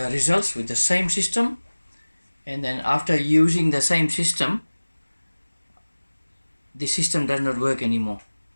results with the same system, and then after using the same system, the system does not work anymore.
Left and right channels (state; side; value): inverted; both; correlation -1.00